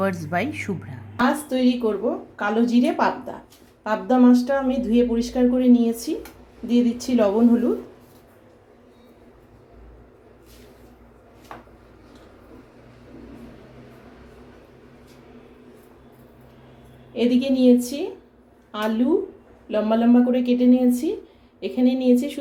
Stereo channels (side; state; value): both; identical; correlation 1.00